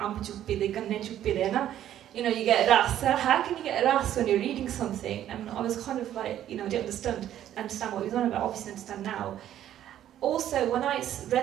You know, you get ras. How can you get ras when you're reading something? And I was kind of like, you know, I didn't understand what he was on about. Obviously, understand now. Also, when I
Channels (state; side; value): quieter; left; 11.6 dB